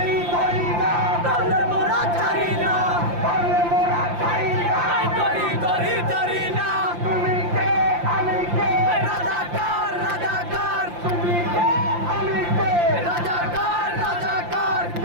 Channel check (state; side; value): late; left; 5.8 ms